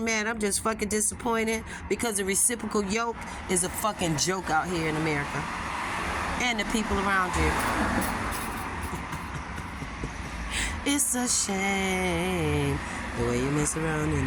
mad. I'm just fucking disappointed because the reciprocal yoke is a fucking joke out here in America. And the people around you. It's a shame the way you mess around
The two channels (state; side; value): identical; both; correlation 1.00